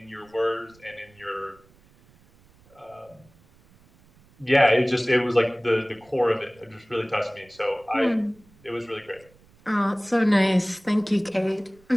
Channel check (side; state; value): right; noise; rumble, 29 dB below the sound